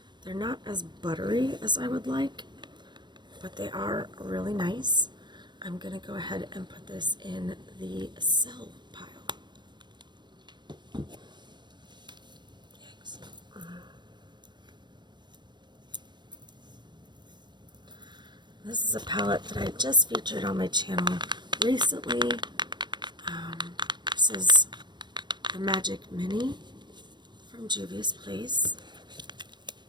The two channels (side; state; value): left; late; 0.22 ms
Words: They're not as buttery as I would like, but they are really nice. I'm gonna go ahead and put this in the sell pile. Yikes. This is a palette that I just featured on my channel recently. This is the Magic Mini from Juvia's Place,